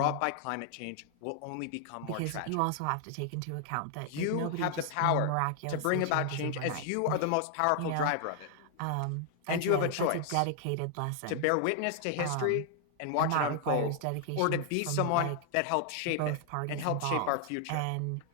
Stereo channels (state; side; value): different; both; correlation 0.00